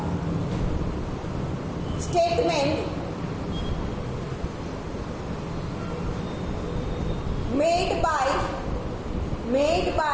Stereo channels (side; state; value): both; identical; correlation 1.00